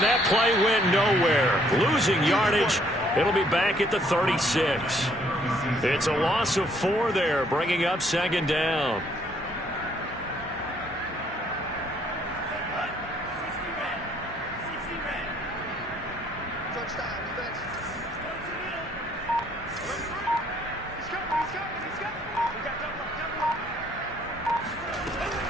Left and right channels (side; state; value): both; normal; correlation 0.65